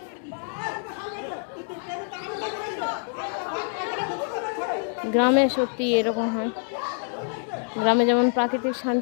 গ্রামে সত্যি এরকম হয়। গ্রামে যেমন প্রাকৃতিক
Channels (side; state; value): right; silent; 61 dB below the other